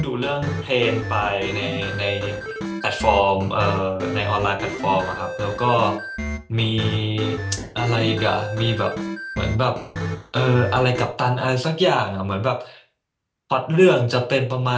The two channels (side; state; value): both; identical; correlation 1.00